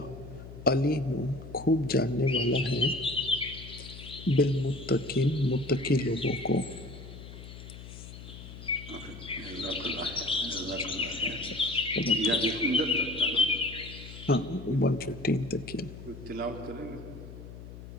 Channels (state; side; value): noise; left; hum, 14 dB below the sound